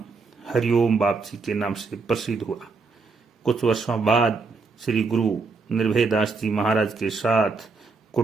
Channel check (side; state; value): left; quieter; 4.4 dB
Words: हरिओम वापसी के नाम से प्रसिद्ध हुआ। कुछ वर्षों बाद श्री गुरु निर्भयदास जी महाराज के साथ